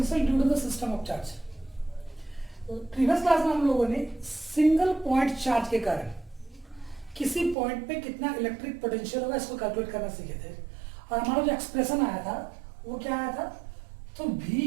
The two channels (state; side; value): drops out; left; at 7.6 s